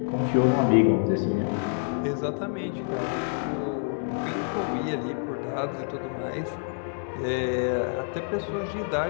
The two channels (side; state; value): right; silent; digital silence